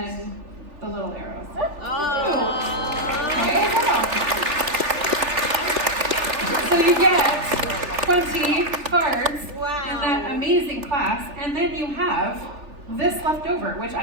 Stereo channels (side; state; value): left; late; 3.4 ms